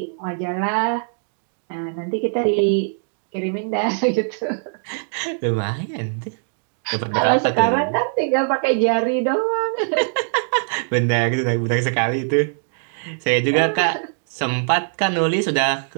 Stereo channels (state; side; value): silent; left; digital silence